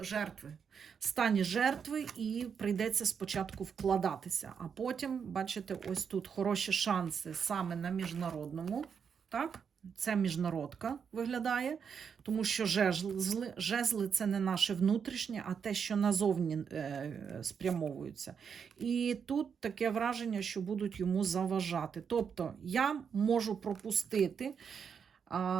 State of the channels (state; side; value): quieter; left; 6.8 dB